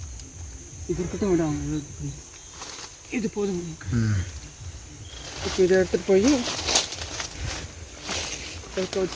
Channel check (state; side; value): identical; both; correlation 1.00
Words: இது இருக்கட்டும், விடாங்க. இது போதும். இப்போ இதை எடுத்துகிட்டு போய் எடுத்து